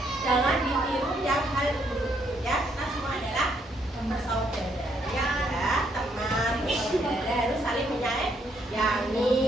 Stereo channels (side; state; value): both; normal; correlation 0.72